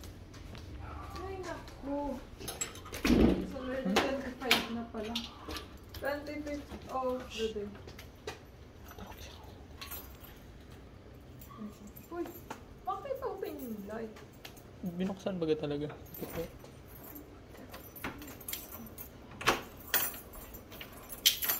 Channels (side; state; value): both; identical; correlation 1.00